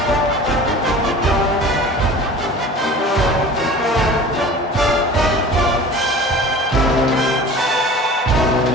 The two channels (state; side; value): normal; both; correlation 0.40